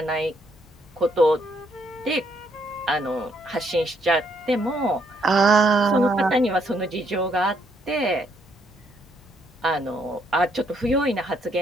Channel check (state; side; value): normal; both; correlation 0.71